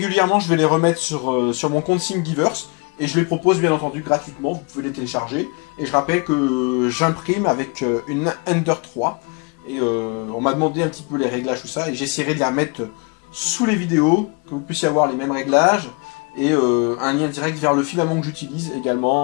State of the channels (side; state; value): right; quieter; 31.1 dB